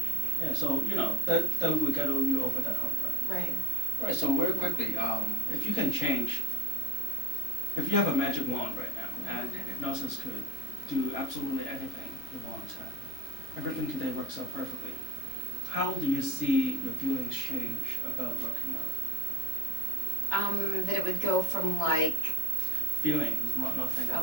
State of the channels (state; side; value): late; right; 2.9 ms